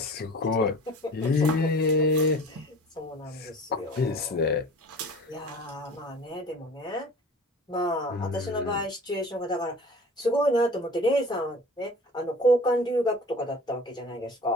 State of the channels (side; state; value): both; normal; correlation 0.41